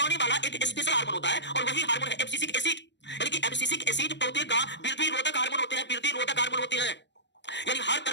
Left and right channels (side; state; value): right; late; 0.52 ms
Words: वाला एक स्पेशल हार्मोन होता है, और वही हार्मोन है एब्सिसिक एसिड। यानी कि एब्सिसिक एसिड पौधे का वृद्धि रोधक हार्मोन होते हैं, वृद्धि रोधक हार्मोन होते हैं, यानी हर